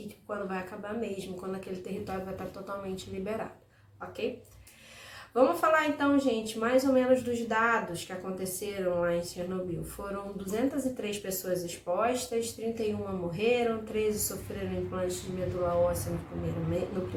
quando vai acabar mesmo, quando aquele território vai estar totalmente liberado, ok? Vamos falar então, gente, mais ou menos dos dados que aconteceram lá em Chernobyl. Foram 203 pessoas expostas, 31 morreram, 13 sofreram implantes de medula óssea nos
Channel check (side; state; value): both; identical; correlation 1.00